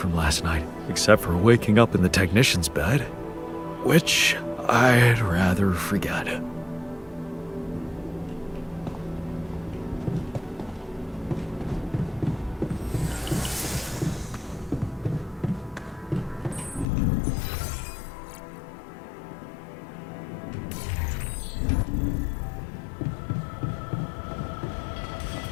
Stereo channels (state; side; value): drops out; right; at 16.9 s